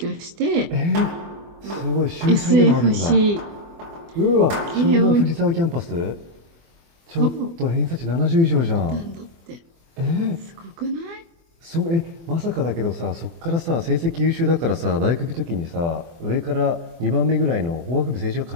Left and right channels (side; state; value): left; late; 24 ms